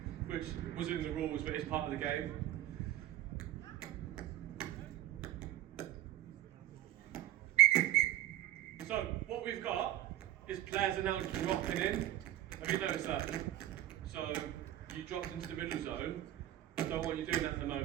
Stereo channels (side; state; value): left; quieter; 13.5 dB